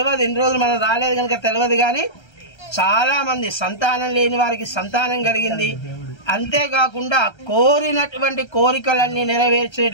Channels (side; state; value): right; late; 1.3 ms